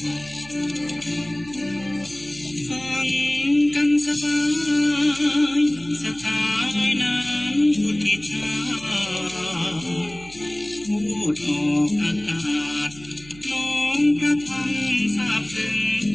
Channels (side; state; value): right; noise; hum, 20 dB below the sound